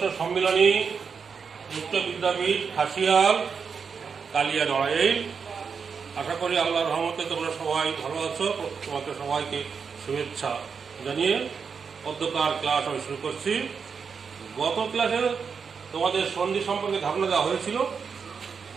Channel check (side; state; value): left; quieter; 6.0 dB